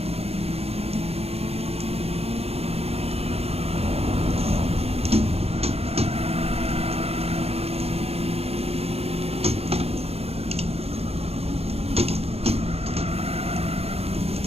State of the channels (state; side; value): late; left; 0.29 ms